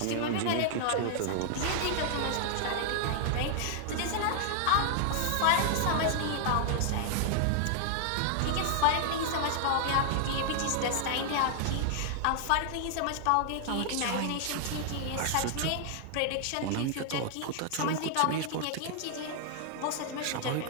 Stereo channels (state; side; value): different; both; correlation 0.00